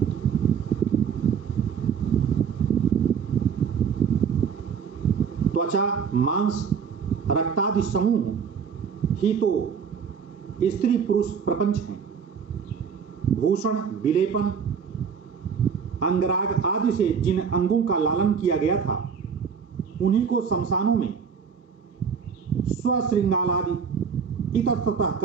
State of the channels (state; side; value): quieter; left; 6.6 dB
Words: त्वचा, मांस, रक्तादि समूह ही तो स्त्री पुरुष प्रपंच हैं। भूषण, विलेपन, अंगराग आदि से जिन अंगों का लालन किया गया था उन्हीं को शमशानों में स्वश्रृंगालादि इतस्ततः